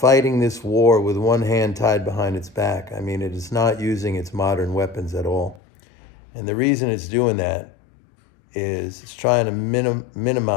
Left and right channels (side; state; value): right; drops out; at 5.6 s